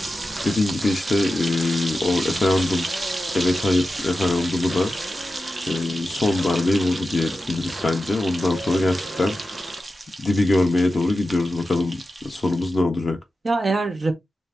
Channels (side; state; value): both; normal; correlation 0.92